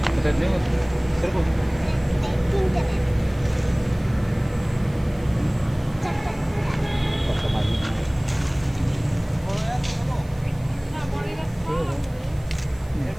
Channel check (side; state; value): right; noise; hiss, 26 dB below the sound